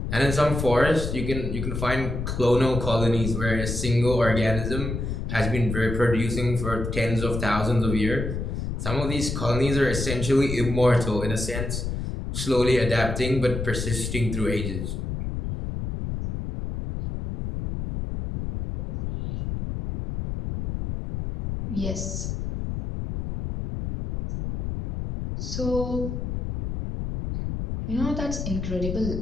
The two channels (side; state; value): left; noise; rumble, 4 dB below the sound